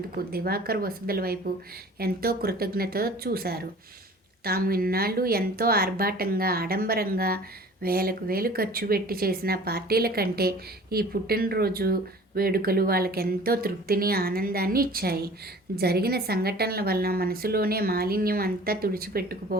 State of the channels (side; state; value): both; normal; correlation 0.46